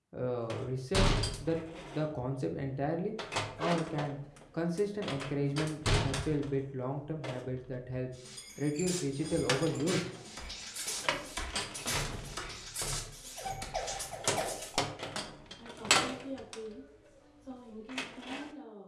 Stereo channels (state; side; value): identical; both; correlation 1.00